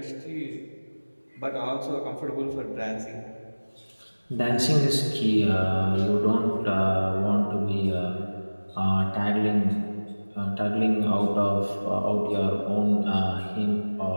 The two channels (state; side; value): inverted; both; correlation -1.00